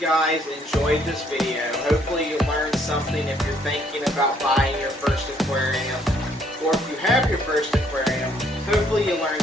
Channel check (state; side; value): normal; both; correlation 0.66